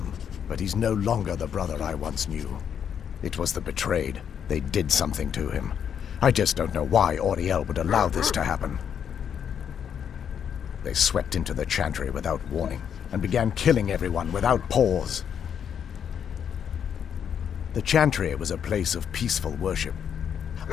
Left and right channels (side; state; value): right; quieter; 8.2 dB